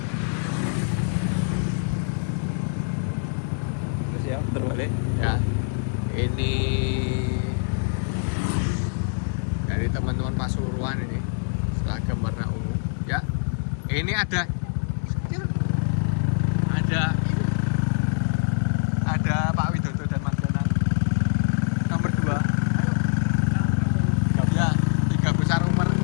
Terus ya, terbalik. Ya. Ini dari teman-teman Pasuruan ini seragam warna ungu. Ya. Ini ada Pak Widodo dan Mas Danang nomor 2. Ya, 3 besar umur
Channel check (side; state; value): right; silent; 62 dB below the other